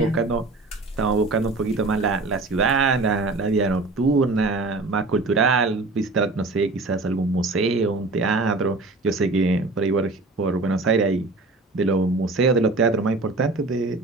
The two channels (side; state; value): left; quieter; 3.4 dB